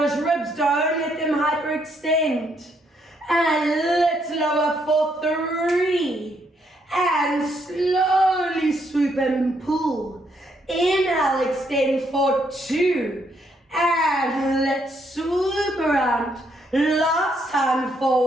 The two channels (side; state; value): both; normal; correlation 0.73